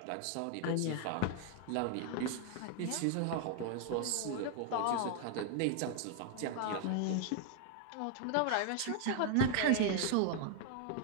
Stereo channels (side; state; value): both; different; correlation 0.00